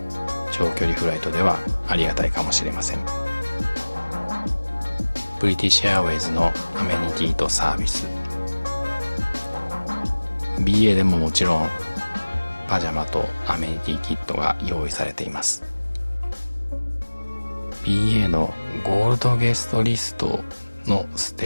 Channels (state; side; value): inverted; both; correlation -1.00